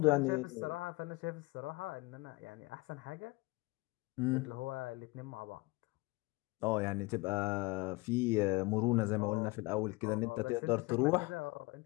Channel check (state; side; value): quieter; right; 23.9 dB